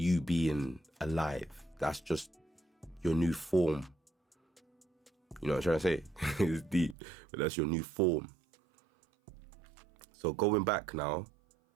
being alive. That's just your new form. You know what I'm trying to say? It's deep, but that's your new form. So going back now,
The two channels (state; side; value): drops out; left; at 7.0 s